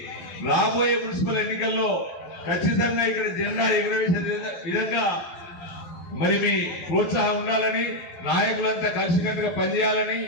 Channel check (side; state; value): right; late; 12 ms